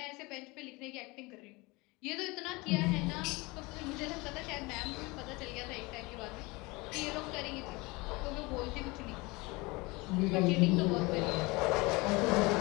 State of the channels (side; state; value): right; quieter; 24.4 dB